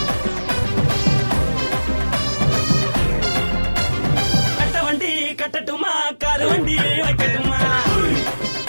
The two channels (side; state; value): both; inverted; correlation -1.00